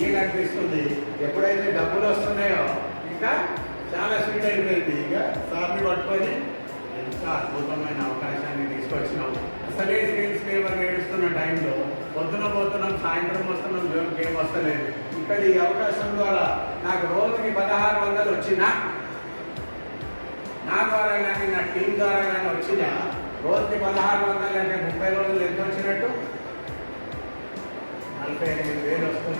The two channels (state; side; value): inverted; both; correlation -1.00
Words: అనిపిస్తుంది. ఎప్పుడైతే డబ్బులు వస్తున్నాయో ఇంకా చాలా స్వీట్ అయిపోయింది. ఇక సార్ని పట్టుకొని ఎంత అద్భుతమైన అవకాశాన్ని తీసుకొచ్చినాం. అసలే సేల్స్ లేవర్ ఏడుస్తున్న టైంలో పొద్దున పోతున్నాం, సాయంత్రం వస్తున్నాం, జోన్కి ఏం వస్తలేదు. ఇక్కడ ఈ అవకాశం ద్వారా నాకు రోజుకి 1600 వచ్చినా, నా ద్వారా కానీ నా టీం ద్వారా కానీ వచ్చినా రోజుకి 1600 అంటే 30 రోజులు ఎంత వచ్చినట్టు? 45,000